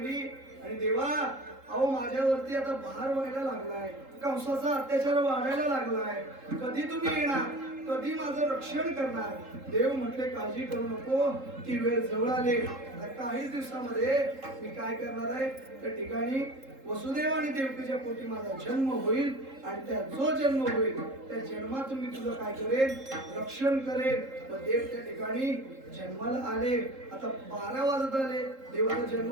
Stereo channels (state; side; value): late; left; 3.7 ms